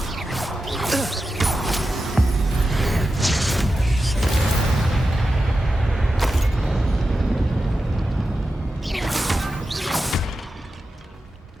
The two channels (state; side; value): normal; both; correlation 0.91